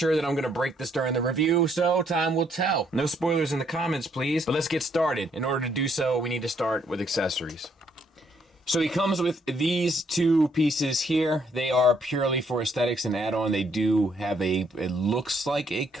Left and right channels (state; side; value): normal; both; correlation 0.69